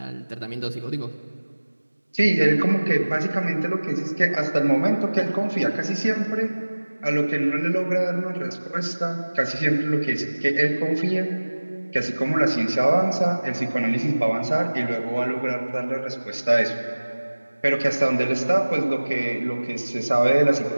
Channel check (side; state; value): both; inverted; correlation -1.00